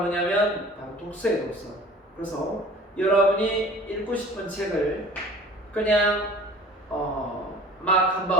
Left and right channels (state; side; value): normal; both; correlation 0.47